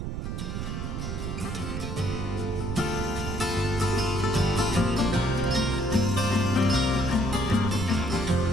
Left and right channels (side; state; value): right; noise; rumble, 4 dB below the sound